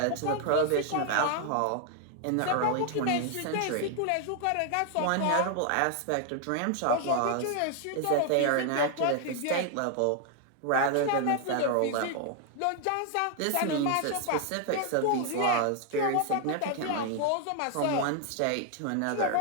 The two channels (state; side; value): different; both; correlation 0.00